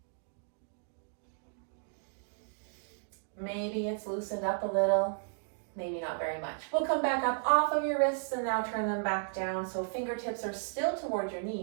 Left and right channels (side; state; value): left; silent; digital silence